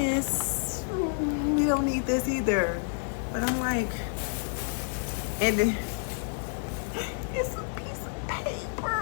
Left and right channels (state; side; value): silent; right; digital silence